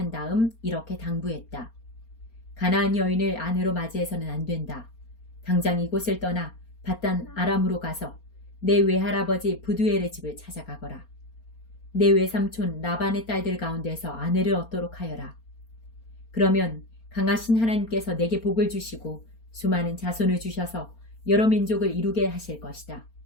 다음 이렇게 당부했다. 가나안 여인을 아내로 맞이해서는 안 된다. 당장 이곳을 떠나 밧단 아람으로 가서 내 외할아버지 부두엘의 집을 찾아가거라. 내 외삼촌 라반의 딸들 가운데서 아내를 얻도록 하여라. 그러면 강하신 하나님께서 내게 복을 주시고 수많은 자손을 주셔서 여러 민족을 이루게 하실 것이다.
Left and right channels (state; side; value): late; right; 4.3 ms